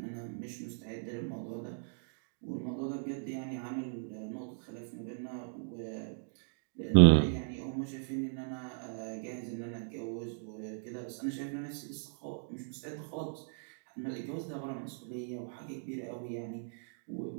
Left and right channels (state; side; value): silent; left; digital silence